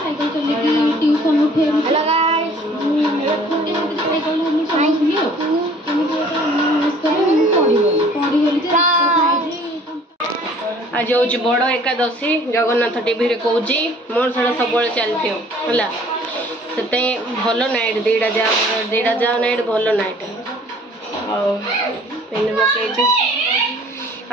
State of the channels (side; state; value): both; normal; correlation 0.53